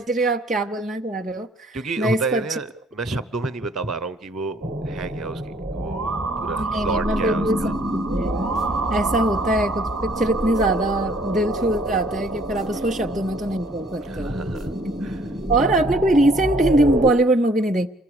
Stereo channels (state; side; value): normal; both; correlation 0.60